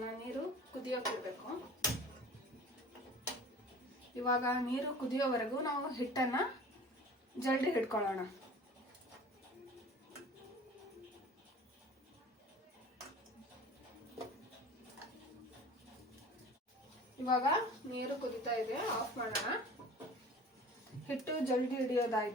ನೀರು ಕುದಿಯೋಕೆ ಇಡಬೇಕು. ಇವಾಗ ನೀರು ಕುದಿಯೋವರೆಗೂ ನಾವು ಹಿಟ್ಟನ್ನು ಜಲ್ದಿ ಹಿಡ್ಕೊಳ್ಳೋಣ. ಇವಾಗ ನೀರು ಕುದಿತಾ ಇದೆ, ಆಫ್ ಮಾಡೋಣ. ಹಿಟ್ಟು ಜಲ್ದಿ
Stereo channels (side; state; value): both; normal; correlation 0.42